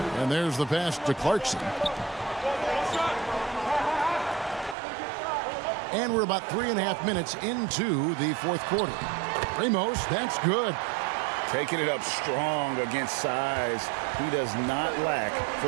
And there's the pass to Clarkson. And we're about 3.5 minutes into the fourth quarter. Ramos, that's good. Taking it up strong against size. He does not lack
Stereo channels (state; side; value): drops out; left; at 4.8 s